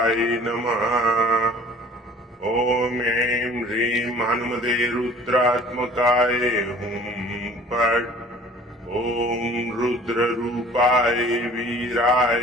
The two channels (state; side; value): normal; both; correlation 0.49